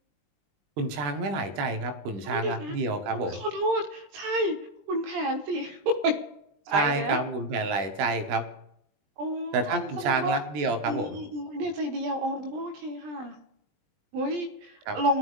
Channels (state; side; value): late; left; 20 ms